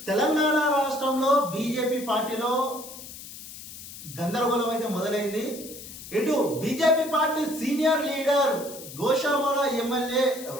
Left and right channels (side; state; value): left; noise; hiss, 14 dB below the sound